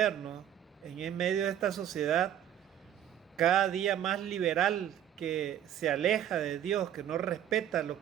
en medio de esta sociedad cada día más liberal, que se aleja de Dios, que no respeta lo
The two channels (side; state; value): left; quieter; 10.7 dB